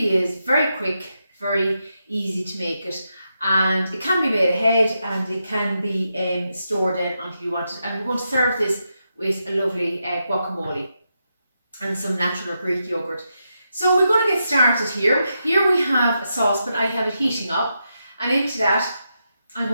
is very quick, very easy to make it, and it can be made ahead and it can be stored in until you want it. And we're going to serve this with a lovely guacamole and some natural or Greek yogurt. So we're going to get started here. Here we have a saucepan. I have it heating up, and into that I'm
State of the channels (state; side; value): inverted; both; correlation -0.85